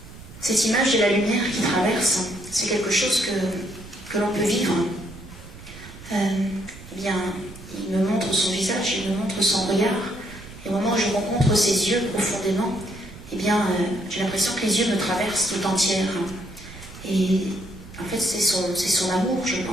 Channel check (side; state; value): right; noise; rumble, 17 dB below the sound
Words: Cette image de la lumière qui traverse, c'est quelque chose que l'on peut vivre. Eh bien, il me montre son visage, il me montre son regard, et au moment où je rencontre ses yeux profondément, eh bien, j'ai l'impression que les yeux me traversent tout entière. Et en fait, c'est son amour, je